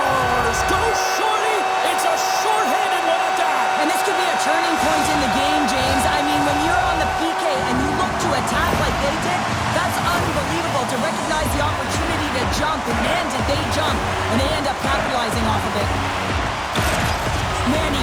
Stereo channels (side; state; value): both; identical; correlation 1.00